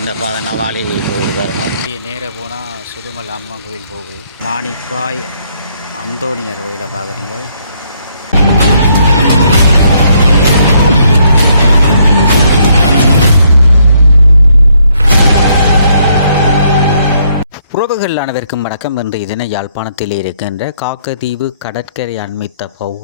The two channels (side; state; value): both; inverted; correlation -0.70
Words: பாதை நவாலி போகுது வரணும். நேராக போனால் சுடுமல் அம்மன் கோயில் போகுது. மாணிப்பாய் அந்தோணியர் கோயிலை பார்க்குறீங்க. உறவுகள் அனைவருக்கும் வணக்கம். இன்று இதனை யாழ்ப்பாணத்தில் இருக்கின்ற காக்கதீவு கடற்கரை அண்மித்த